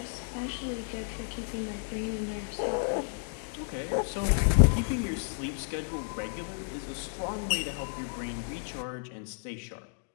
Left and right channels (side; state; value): right; silent; digital silence